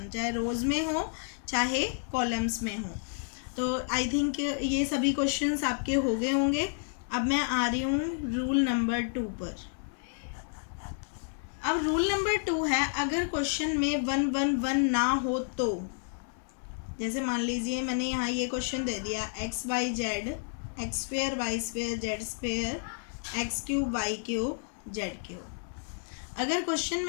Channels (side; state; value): right; silent; digital silence